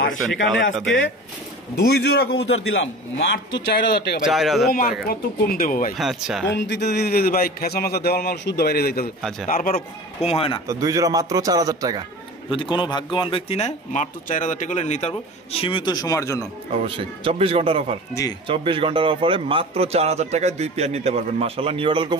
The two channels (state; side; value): normal; both; correlation 0.36